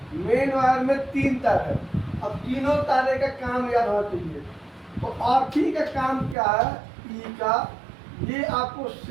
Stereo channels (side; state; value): left; drops out; at 6.4 s